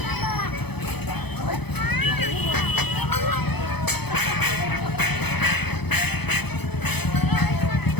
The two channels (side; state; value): right; late; 0.98 ms